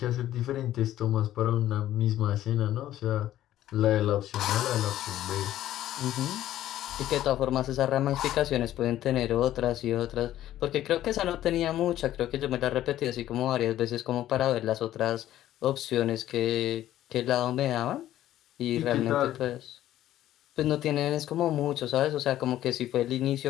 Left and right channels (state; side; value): quieter; right; 13.1 dB